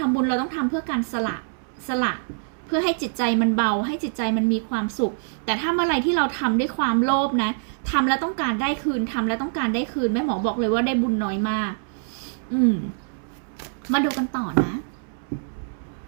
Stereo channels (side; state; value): left; silent; 62 dB below the other